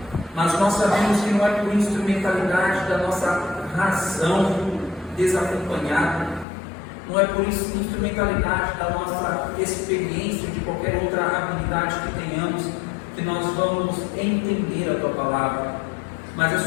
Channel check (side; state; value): right; drops out; at 6.5 s